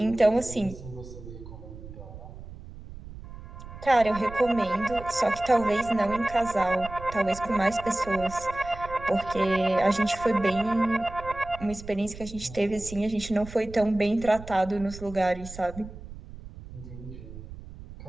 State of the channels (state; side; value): noise; right; rumble, 14 dB below the sound